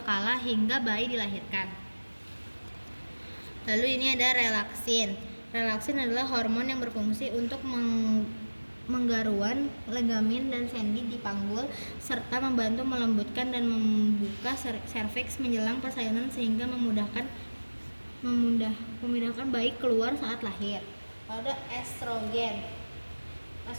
hingga bayi dilahirkan. Lalu ini ada relaksin. Relaksin adalah hormon yang berfungsi untuk menggaruan ligamen dan sendi di panggul serta membantu melembutkan dan membuka serviks menjelang persalinan sehingga memudahkan bayi keluar saat lahir. Lalu ada estrogen.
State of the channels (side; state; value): both; inverted; correlation -1.00